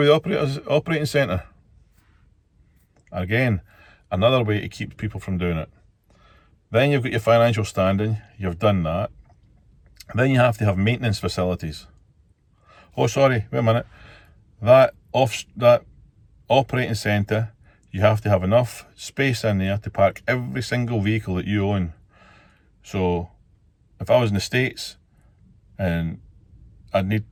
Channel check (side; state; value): both; identical; correlation 1.00